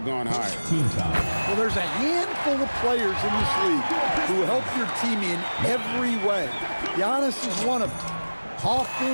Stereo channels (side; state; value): both; inverted; correlation -1.00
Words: gone higher. Well, there's a handful of players in this league who help your team in every way. Giannis is one of them.